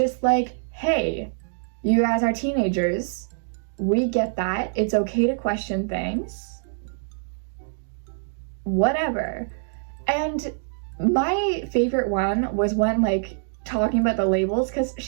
like, hey, you guys are teenagers. We get that. It's okay to question things. Whatever. And my favorite one was when like talking about the labels, because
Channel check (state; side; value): silent; left; digital silence